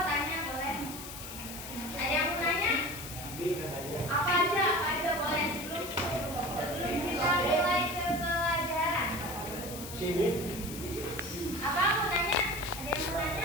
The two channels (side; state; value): left; noise; hiss, 10 dB below the sound